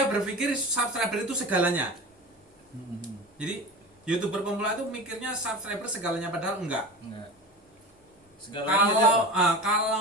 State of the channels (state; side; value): normal; both; correlation 0.30